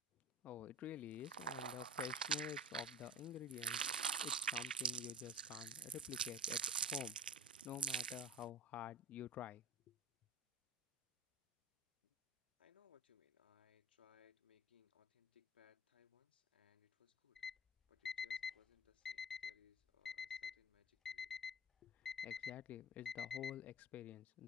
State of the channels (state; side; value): normal; both; correlation 0.33